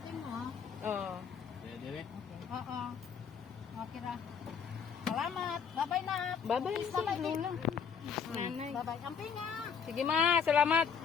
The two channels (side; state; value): right; quieter; 6.8 dB